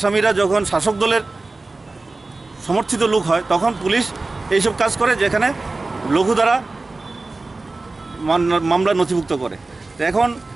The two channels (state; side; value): quieter; left; 3.4 dB